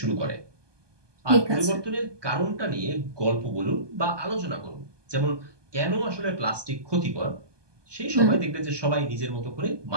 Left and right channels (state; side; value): late; left; 1.2 ms